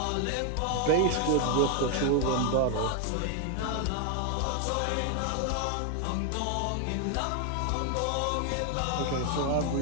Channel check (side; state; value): both; different; correlation 0.01